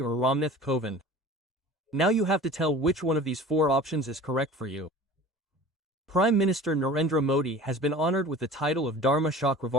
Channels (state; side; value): normal; both; correlation 0.41